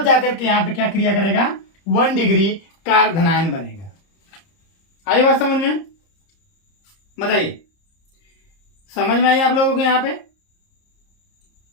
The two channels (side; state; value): right; late; 30 ms